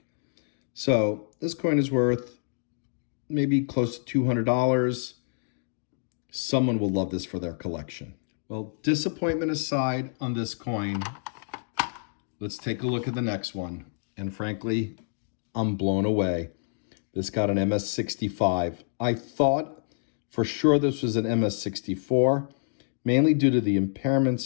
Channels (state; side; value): silent; right; digital silence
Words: So this coin is worth maybe close to $200. Someone will love this for their collection. Well, disappointment aside on this coin, let's take a look at the next one. And frankly, I'm blown away. This got an MS65. I thought for sure this was an MS64, mainly due to the